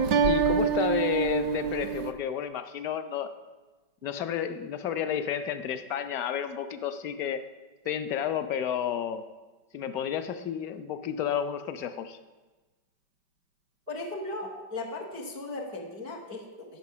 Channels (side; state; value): left; late; 5.2 ms